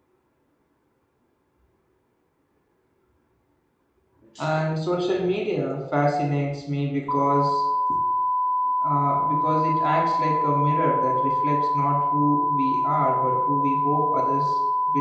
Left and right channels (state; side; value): identical; both; correlation 1.00